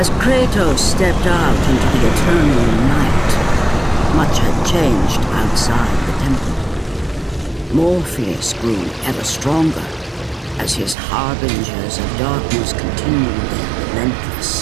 Kratos stepped out into the eternal night, much had changed outside the temple. Morpheus grew ever stronger as his harbingers of darkness continued their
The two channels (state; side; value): drops out; left; at 11.0 s